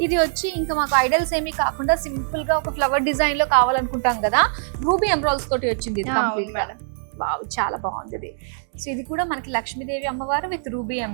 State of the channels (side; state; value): left; silent; digital silence